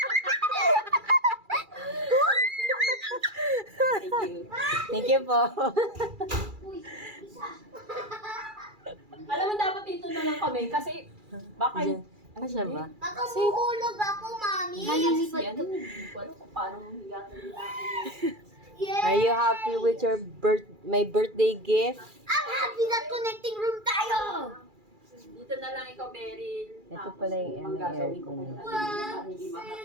you. Thank you po. Alam mo, dapat dito na lang kami kasi baka Diyan. Ano siya ba? Baka mahulog ako, mami. Malilipad ka. Hindi ko alam kung paano higatin nila. Yeah. Are you happy with your my birthday gift? I'm happy that connecting room tayo. Dito na lang ikaw, Beryl. Ito pala yung manggagawin ko aircon. kayo. Para hindi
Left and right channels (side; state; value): left; late; 2.4 ms